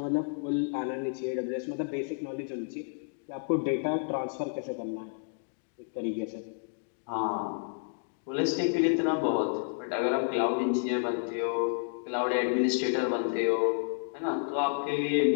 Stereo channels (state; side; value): silent; right; digital silence